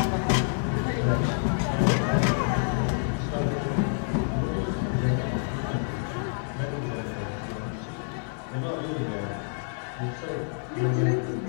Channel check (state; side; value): silent; right; digital silence